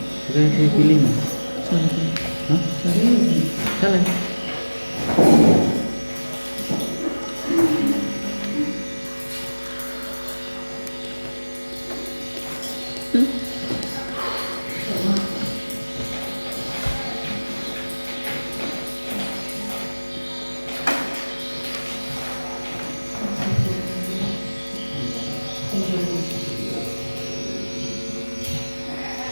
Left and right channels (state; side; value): inverted; both; correlation -1.00